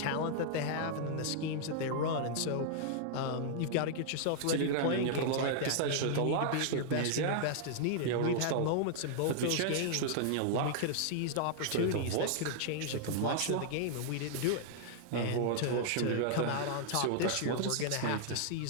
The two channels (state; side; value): different; both; correlation -0.01